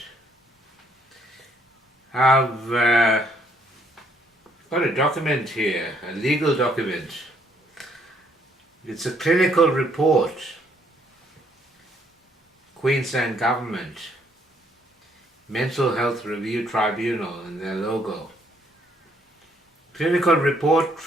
I've got a document here, a legal document. It's a clinical report, Queensland Government, Mental Health Review Tribunal and their logo. Clinical Report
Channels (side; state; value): both; normal; correlation 0.68